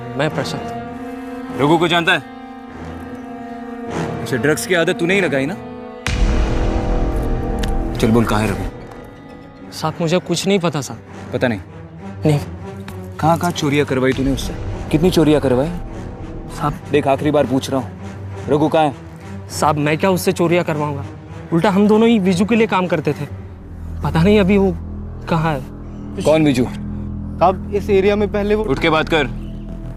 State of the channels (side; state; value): both; identical; correlation 1.00